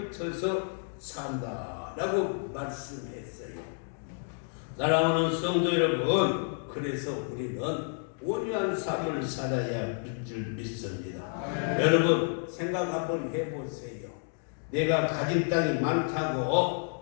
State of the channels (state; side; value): silent; right; 58 dB below the other